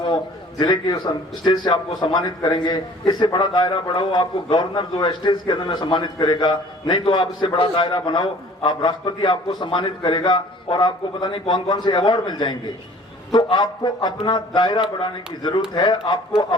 जिले के स्टेज से आपको सम्मानित करेंगे। इससे बड़ा दायरा बढ़ाओ, आपको गवर्नर जो है स्टेज के अंदर में सम्मानित करेगा। नहीं तो आप इससे बड़ा दायरा बनाओ, आप राष्ट्रपति आपको सम्मानित करेगा और आपको पता नहीं कौन कौन से अवार्ड मिल जाएंगे। तो आपको अपना दायरा बढ़ाने की जरूरत है। आपको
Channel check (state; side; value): normal; both; correlation 0.50